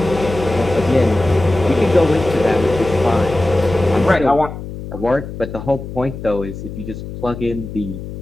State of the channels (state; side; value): noise; left; hum, 10 dB below the sound